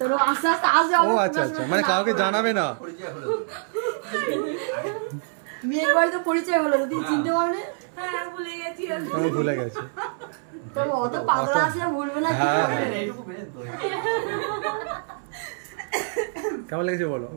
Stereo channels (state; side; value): silent; left; 62 dB below the other